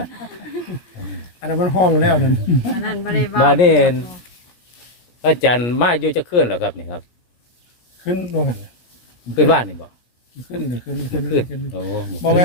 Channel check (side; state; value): right; late; 17 ms